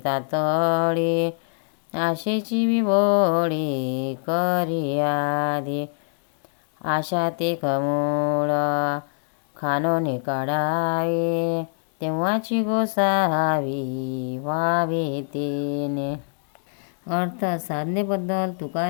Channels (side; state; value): right; silent; 62 dB below the other